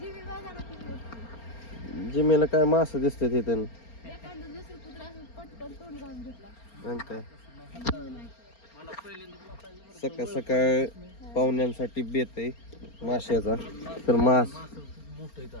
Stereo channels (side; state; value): right; late; 4.3 ms